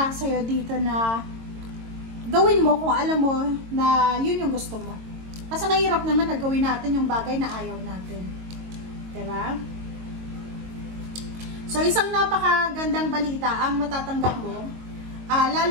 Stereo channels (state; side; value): late; left; 22 ms